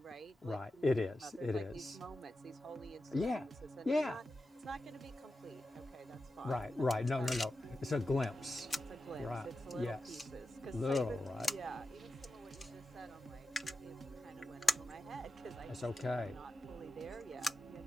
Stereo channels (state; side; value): normal; both; correlation 0.90